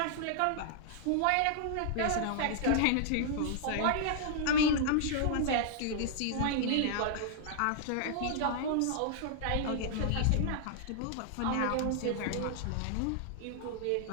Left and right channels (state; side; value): different; both; correlation -0.01